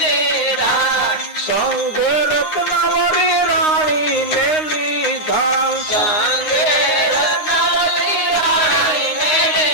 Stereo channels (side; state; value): right; late; 9.6 ms